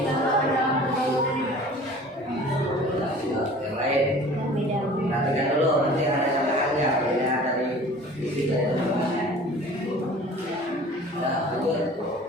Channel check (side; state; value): both; normal; correlation 0.45